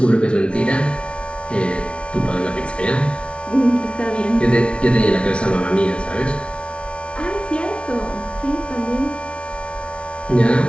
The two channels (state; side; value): late; right; 0.059 ms